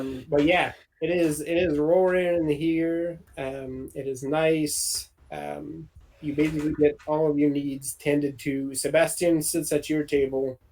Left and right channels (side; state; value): both; identical; correlation 1.00